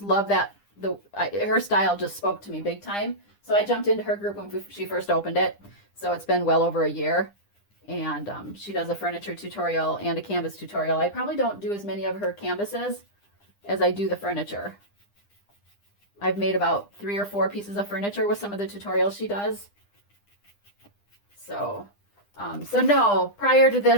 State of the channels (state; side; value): late; right; 9.9 ms